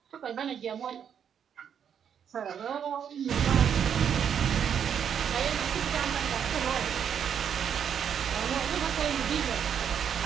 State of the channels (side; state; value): left; quieter; 8.2 dB